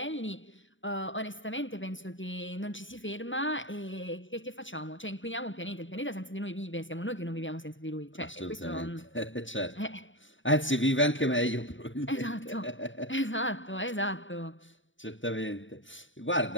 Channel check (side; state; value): right; late; 0.56 ms